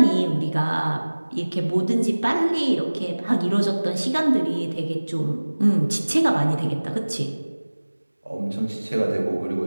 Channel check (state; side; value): inverted; both; correlation -1.00